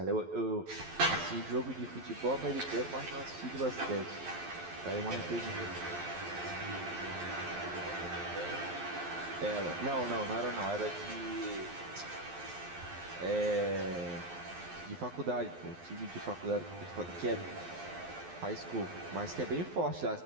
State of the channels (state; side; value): late; left; 12 ms